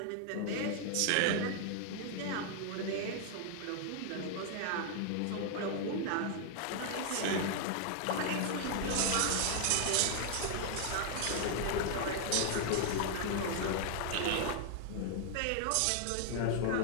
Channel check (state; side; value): different; both; correlation 0.00